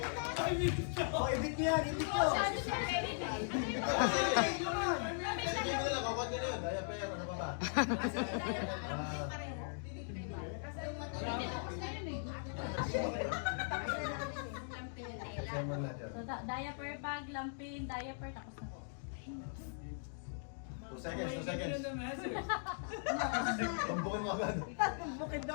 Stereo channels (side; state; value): right; silent; digital silence